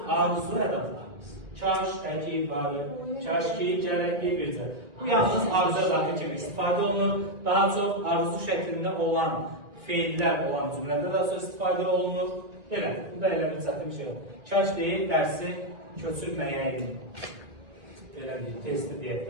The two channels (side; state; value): left; late; 1.9 ms